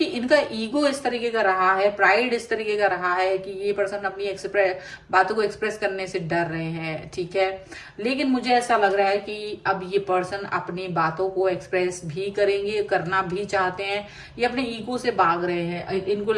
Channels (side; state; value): both; identical; correlation 1.00